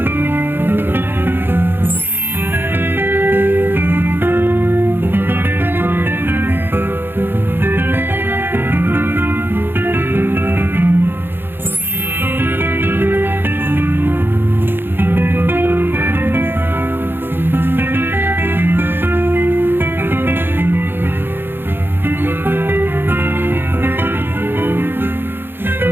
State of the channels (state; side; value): late; left; 0.10 ms